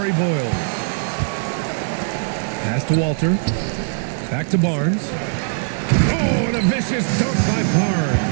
Boyles. Pass to Walter. Back to Barnes. Oh, and a vicious dunk by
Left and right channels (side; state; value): left; silent; digital silence